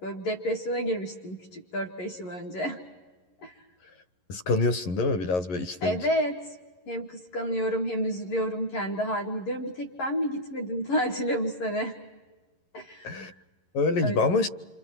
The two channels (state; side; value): late; right; 11 ms